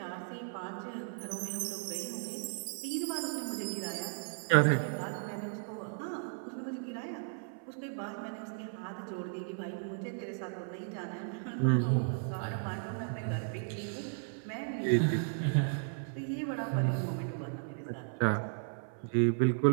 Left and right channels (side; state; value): left; silent; 54 dB below the other